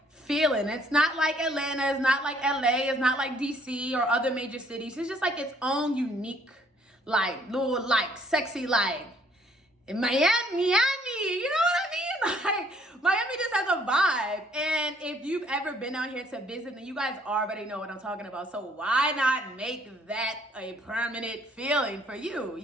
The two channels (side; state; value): both; normal; correlation 0.63